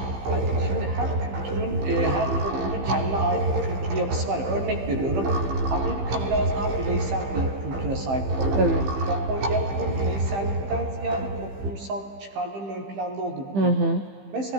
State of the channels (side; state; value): left; late; 15 ms